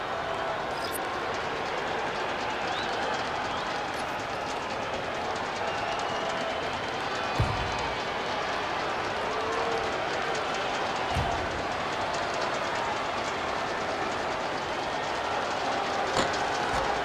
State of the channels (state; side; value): identical; both; correlation 1.00